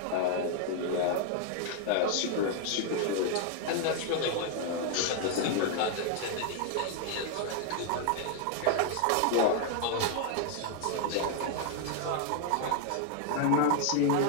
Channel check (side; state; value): both; different; correlation 0.00